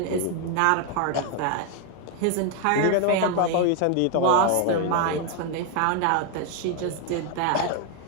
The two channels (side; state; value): both; different; correlation 0.01